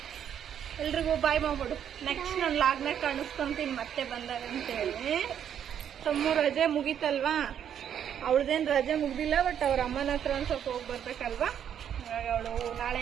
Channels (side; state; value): left; quieter; 9.1 dB